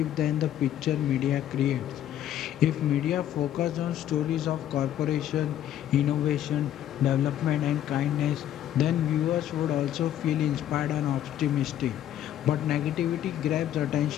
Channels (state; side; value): quieter; right; 11.5 dB